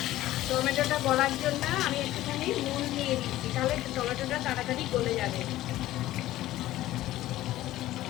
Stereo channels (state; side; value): quieter; right; 15.2 dB